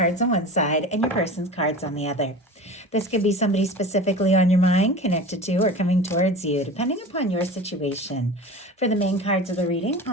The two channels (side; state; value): both; normal; correlation 0.35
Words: on one side and your person's cards on the other. This could be somebody specifically on your mind, connected to, or coming towards you, depending upon your situation. For the main cards of the reading,